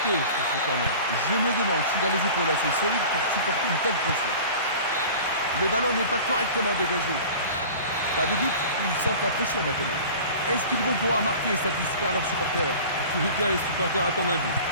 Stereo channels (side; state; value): both; inverted; correlation -0.40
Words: sur ce corner. Je me demande s'il a les épaules assez solides pour supporter une telle pression. Le ballon n'est pas correctement dégagé. Pas de doute, ils sentent la pression maintenant. Est-ce qu'ils vont pouvoir marquer et satisfaire leurs supporters? En tous les cas, les supporters attendent un but.